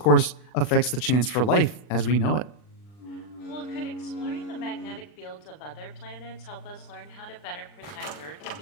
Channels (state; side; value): late; right; 40 ms